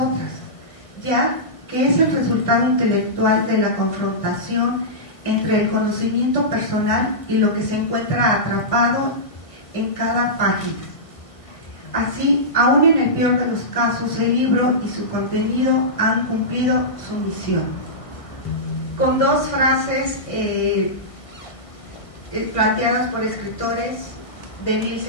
ya que es el resultado intelectual de la confrontación entre el conocimiento personal y lo que se encuentra atrapado en cada página. Así, aún en el peor de los casos, el libro y su contenido han cumplido su misión. Con dos frases planteadas por escritores de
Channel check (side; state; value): right; late; 1.6 ms